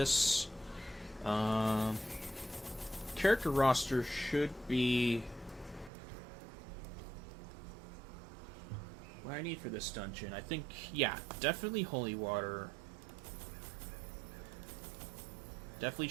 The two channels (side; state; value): left; drops out; at 5.9 s